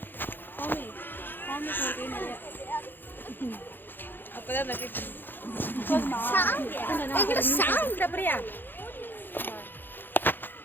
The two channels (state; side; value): late; right; 0.095 ms